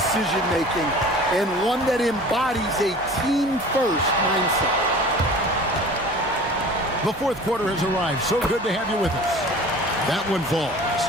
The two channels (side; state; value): both; normal; correlation 0.42